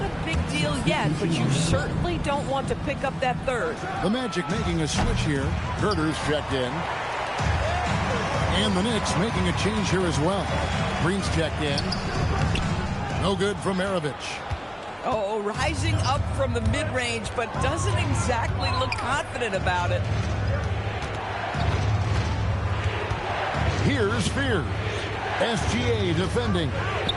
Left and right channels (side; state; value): both; identical; correlation 1.00